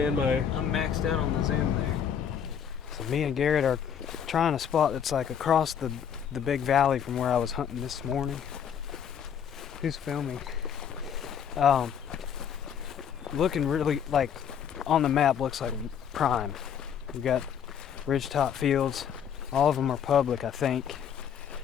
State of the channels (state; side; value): quieter; right; 8.3 dB